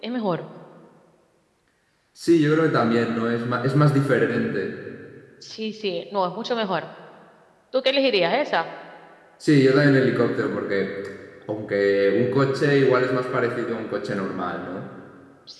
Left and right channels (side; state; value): both; identical; correlation 1.00